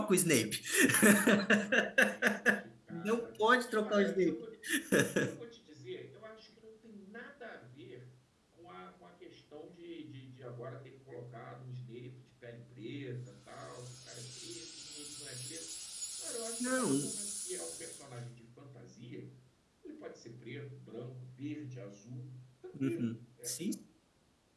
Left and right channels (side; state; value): both; identical; correlation 1.00